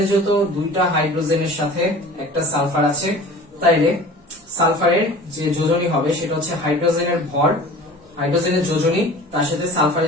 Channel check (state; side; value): normal; both; correlation 0.42